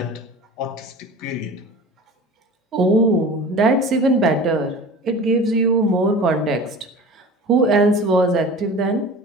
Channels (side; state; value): both; normal; correlation 0.38